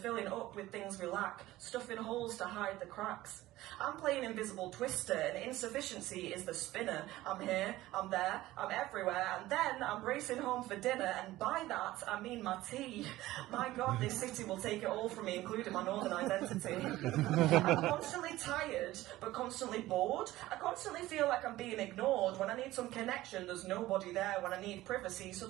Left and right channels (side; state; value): left; quieter; 16.6 dB